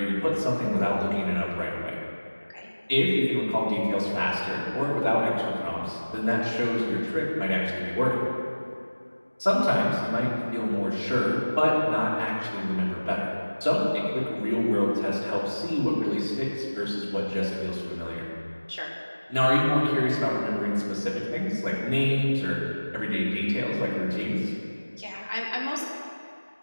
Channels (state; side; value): inverted; both; correlation -1.00